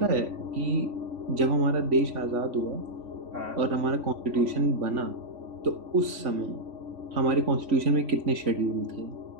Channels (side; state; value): left; late; 3.5 ms